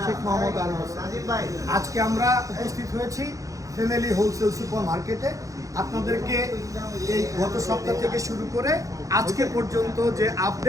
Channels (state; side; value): late; left; 0.16 ms